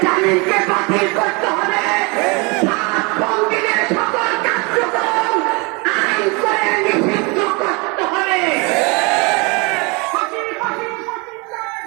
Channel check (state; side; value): quieter; left; 29.0 dB